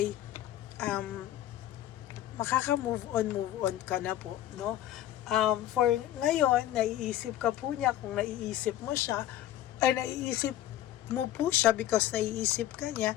makaka-move on ka na po, no? For ngayon, naiisip ka po niya, kung naiisip mo siya, ay naiisip mo po siya because naiisip ka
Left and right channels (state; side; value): quieter; right; 12.6 dB